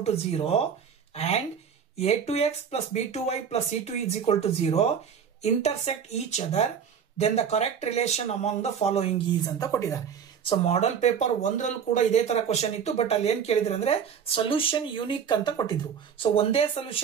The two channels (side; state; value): left; quieter; 7.5 dB